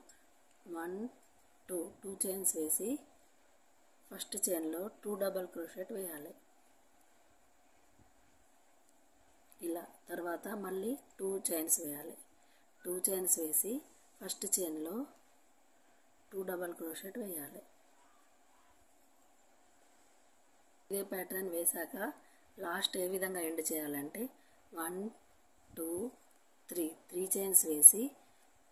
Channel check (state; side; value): identical; both; correlation 1.00